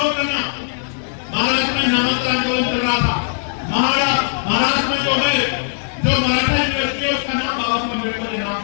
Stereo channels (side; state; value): right; silent; digital silence